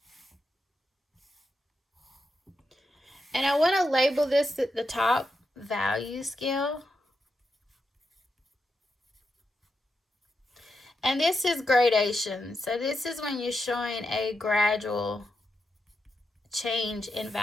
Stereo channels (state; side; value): normal; both; correlation 0.85